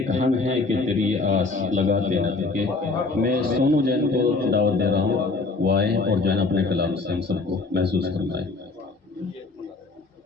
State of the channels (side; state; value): right; quieter; 3.7 dB